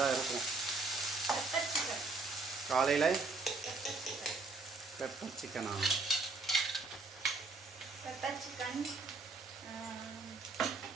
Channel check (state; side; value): quieter; left; 3.8 dB